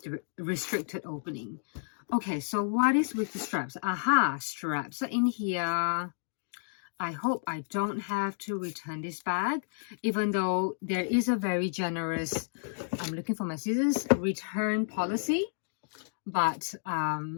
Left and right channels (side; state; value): right; silent; digital silence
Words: opening. Okay, so what is with the straps? Aha, straps are in here. I hope I don't have to return this bag, even though there is a very generous, I'm looking for my scissors, return policy. But